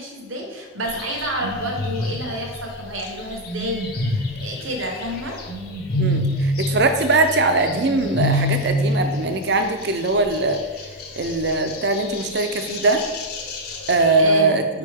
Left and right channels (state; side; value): normal; both; correlation -0.04